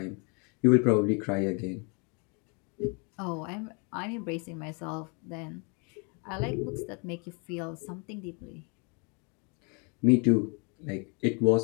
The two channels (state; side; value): quieter; right; 34.3 dB